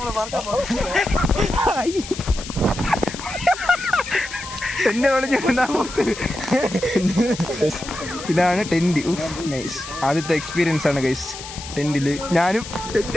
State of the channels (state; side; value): noise; left; hiss, 12 dB below the sound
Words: ഇതാണ് ടെന്റ്. നൈസ്. ആദ്യത്തെ എക്സ്പീരിയൻസ് ആണ് ഗൈസ് ടെന്റില്. ഞാനും